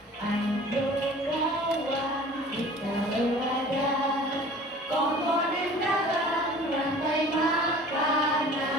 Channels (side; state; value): both; normal; correlation 0.45